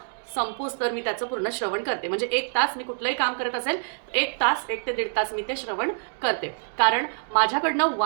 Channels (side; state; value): left; silent; digital silence